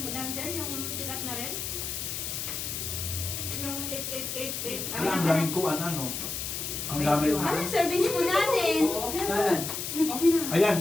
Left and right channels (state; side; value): noise; left; hiss, 4 dB below the sound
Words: dancer, yung sikat na rin. Yung 8888. Wala, ang daming kuhan, ano. Ang dami. Ano, serving spoon natin? Okay na. Saan? Okay na. Ayan,